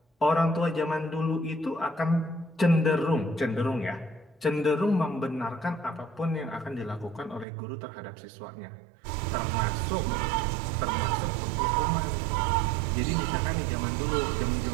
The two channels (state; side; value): drops out; left; at 7.5 s